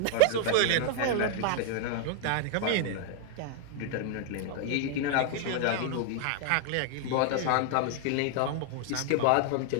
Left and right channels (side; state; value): both; different; correlation 0.00